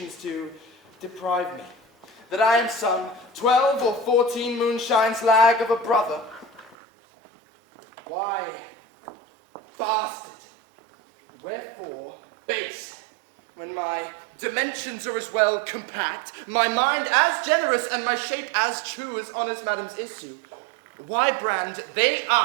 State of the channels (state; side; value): drops out; left; at 6.8 s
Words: to deprive me, that I am some 12 or 14 moonshines lag of a brother? Why, bastard, wherefore base, when my dimensions are as well compact, my mind as generous, and my shape as true as honest madam's issue? Why brand they